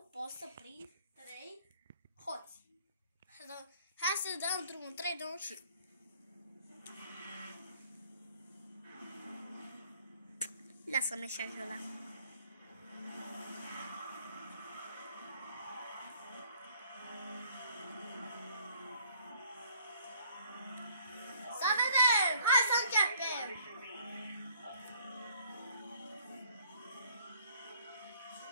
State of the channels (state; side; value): inverted; both; correlation -0.60